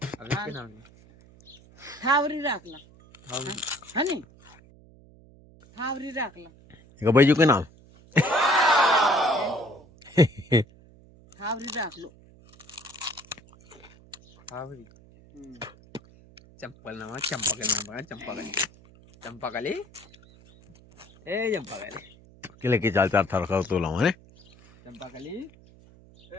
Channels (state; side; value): noise; right; hum, 25 dB below the sound